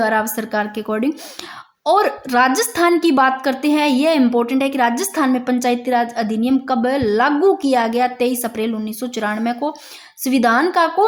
राव सरकार के अकॉर्डिंग। और राजस्थान की बात करते हैं, यह इंपॉर्टेंट है कि राजस्थान में पंचायती राज अधिनियम कब लागू किया गया, 23 अप्रैल 1994 को। संविधान का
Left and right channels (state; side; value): identical; both; correlation 1.00